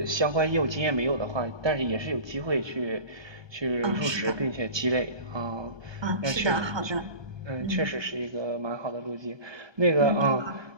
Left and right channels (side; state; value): left; late; 1.2 ms